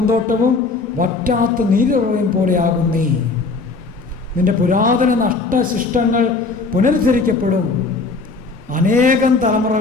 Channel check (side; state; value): right; quieter; 4.0 dB